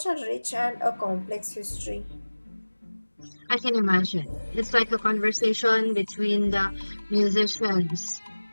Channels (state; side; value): inverted; both; correlation -1.00